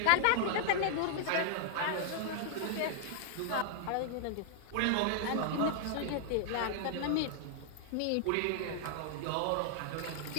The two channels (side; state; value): both; different; correlation -0.01